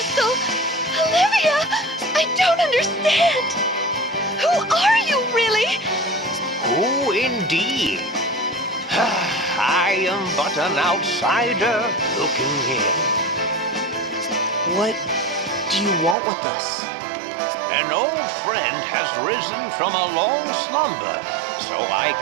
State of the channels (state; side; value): drops out; left; at 16.2 s